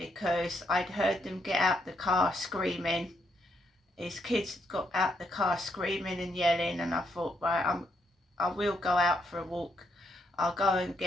I'd heard them get out the car screaming. His kids got out the car screaming and yelling, and I thought, right, I will go out for a walk. I'll go and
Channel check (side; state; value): both; normal; correlation 0.76